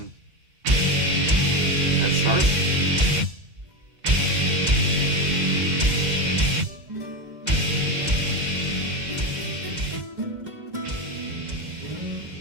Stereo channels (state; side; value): late; left; 2.0 ms